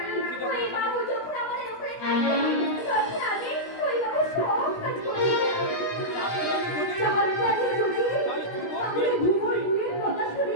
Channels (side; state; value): right; late; 17 ms